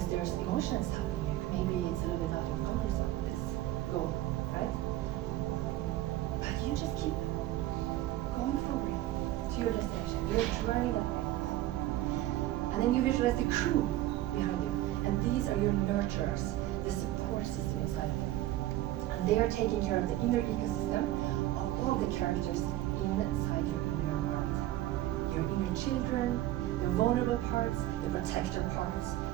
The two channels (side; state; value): left; quieter; 14.9 dB